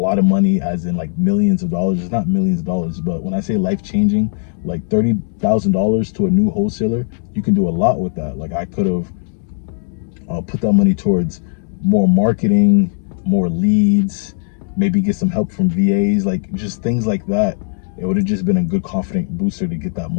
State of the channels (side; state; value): right; silent; digital silence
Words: of money as in like millions of dollars. It's not millions of dollars, but when I say life-changing, like $30,000 to a new wholesaler, you can do a lot with that. Like I could have put that money towards more marketing, more leads, maybe get some help from VAs, like just things like that. It would have just been a good confident booster to get that